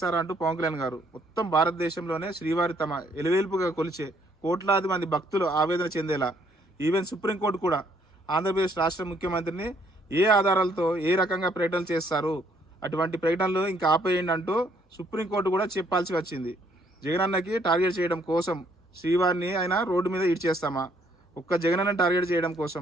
పవన్ కళ్యాణ్ గారు మొత్తం భారతదేశంలోనే శ్రీవారి తమ ఎలువేల్పుగా కొలిచే కోట్లాది మంది భక్తులు ఆవేదన చెందేలా ఈవెన్ సుప్రీంకోర్టు కూడా ఆంధ్రప్రదేశ్ రాష్ట్ర ముఖ్యమంత్రిని ఏ ఆధారాలతో ఏ రకంగా ప్రకటనలు చేస్తారు, అటువంటి ప్రకటనలు ఇంకా ఆపేయండి అంటూ సుప్రీంకోర్టు కూడా చెప్పాల్సి వచ్చింది. జగనన్నకి టార్గెట్ చేయడం కోసం శ్రీవారిని ఆయన రోడ్డు మీద ఇడ్చేస్తామా? ఒక్క జగనన్న టార్గెట్ చేయడం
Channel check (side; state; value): both; normal; correlation 0.67